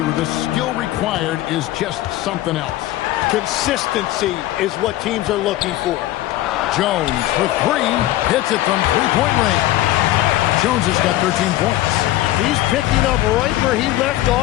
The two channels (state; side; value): quieter; right; 15.3 dB